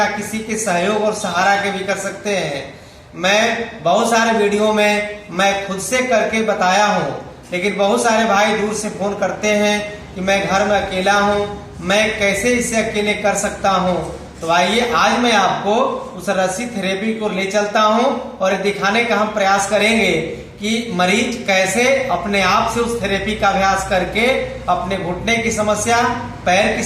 किसी के सहयोग और सहारा के भी कर सकते हैं। मैं बहुत सारे वीडियो में मैं खुद से करके बताया हूँ, लेकिन बहुत सारे भाई दूर से फोन करते हैं कि मैं घर में अकेला हूँ, मैं कैसे इसे अकेले कर सकता हूँ। तो आइए आज मैं आपको उस रस्सी थेरेपी को ले चलता हूँ और दिखाने का हम प्रयास करेंगे कि मरीज कैसे अपने आप से उस थेरेपी का अभ्यास करके अपने घुटने की समस्या, पैर की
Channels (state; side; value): identical; both; correlation 1.00